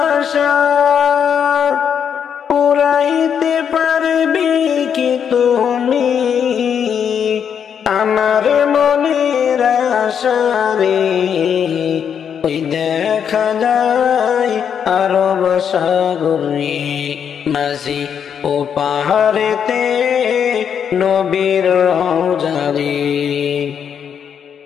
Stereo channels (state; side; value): quieter; right; 7.9 dB